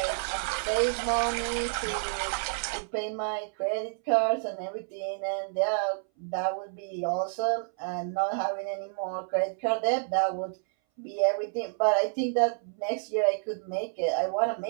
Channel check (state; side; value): silent; left; 58 dB below the other